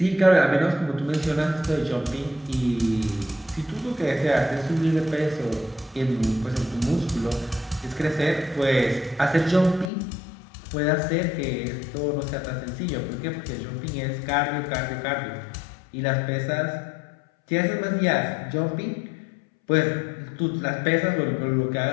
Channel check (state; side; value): drops out; right; at 9.9 s